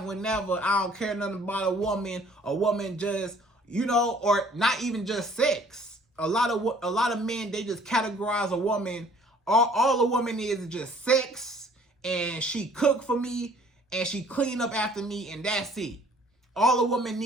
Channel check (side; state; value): both; normal; correlation 0.56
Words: whenever. I don't care nothing about a woman. A woman just, you know, or not even just sex. A lot of men, they just categorize a woman. All a woman is just sex, and she cook for me, and she clean up after me, and that's it. All a woman